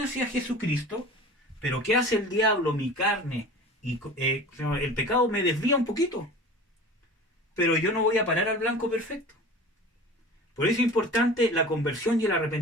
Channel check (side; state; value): both; normal; correlation 0.38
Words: Jesucristo, pero ¿qué hace el diablo, mi carne? Y el pecado me desvía un poquito. Pero yo no voy a parar al blanco perfecto. Por eso es importante la conversión y el